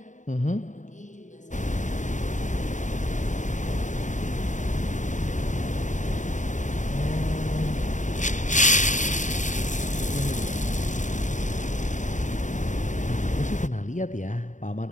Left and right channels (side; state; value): right; late; 0.36 ms